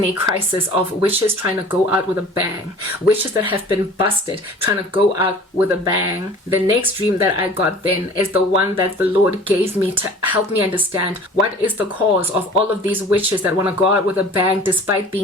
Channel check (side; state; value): both; normal; correlation 0.45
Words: a crisis of witches trying to go out with a bang. Witches that have been busted trying to go out with a bang. The next dream that I got then is the one that the Lord gave me to help me understand what is the cause of all of these witches that want to go out with a bang despite